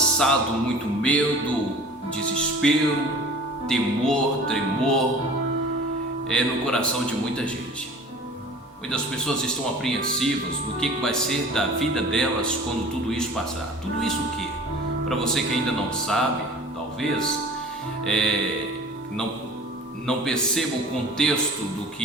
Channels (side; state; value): both; normal; correlation 0.43